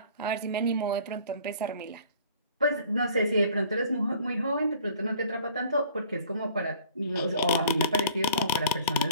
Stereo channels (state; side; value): inverted; both; correlation -0.52